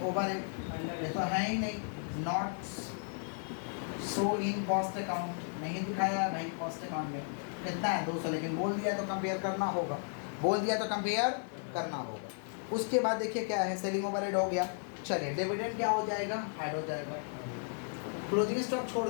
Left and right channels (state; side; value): silent; right; 55 dB below the other